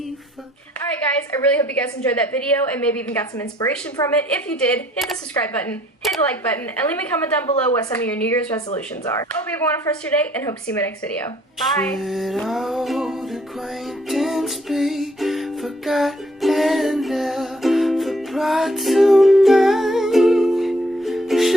for... Alright guys, I really hope you guys enjoyed that video and maybe even got some inspiration from it. If you did, hit the subscribe button, hit the like button, and leave me a comment down below what some of your New Year's resolutions are. Hope you have a wonderful rest of your day, and hope to see you in my next video. Bye! Should old acquaintance be forgotten and never brought to mind?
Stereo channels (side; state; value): both; normal; correlation 0.63